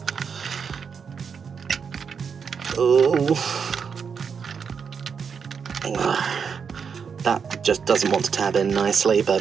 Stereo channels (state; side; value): quieter; left; 6.3 dB